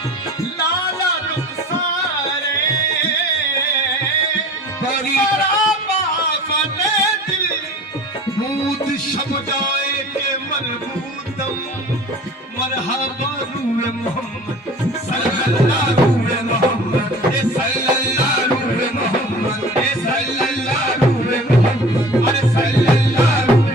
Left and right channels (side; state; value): both; normal; correlation 0.43